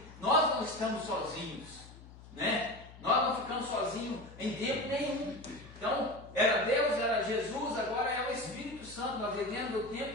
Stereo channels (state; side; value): noise; left; hum, 18 dB below the sound